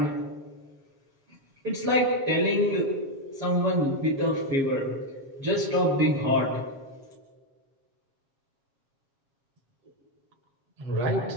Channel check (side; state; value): left; late; 7.4 ms